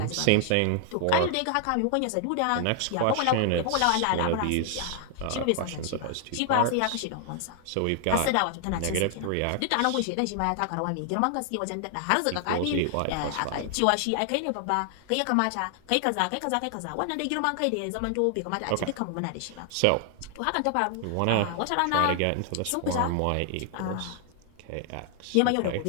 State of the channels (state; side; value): different; both; correlation 0.00